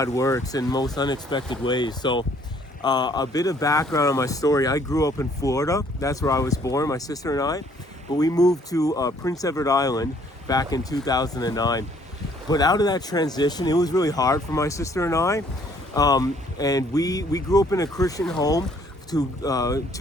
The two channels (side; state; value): both; normal; correlation 0.62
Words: works in most unexpected ways. So a bit of background on my story. I grew up in Florida. That's where I was born, my sister and I. But we moved to Prince Edward Island back in 2009. But out of that transition, it was really hard for my sister and I. And we grew up in a Christian home to